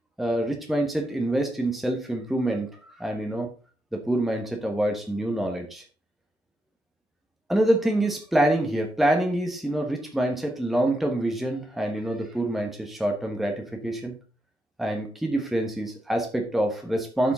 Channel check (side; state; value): both; normal; correlation 0.84